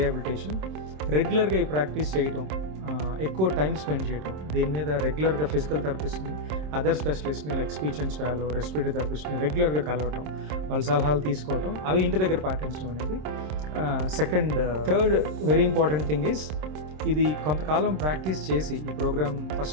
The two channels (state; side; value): late; left; 26 ms